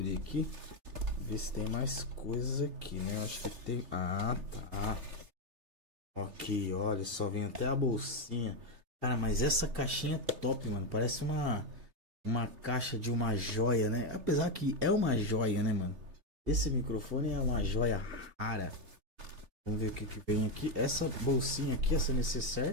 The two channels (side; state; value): left; late; 3.0 ms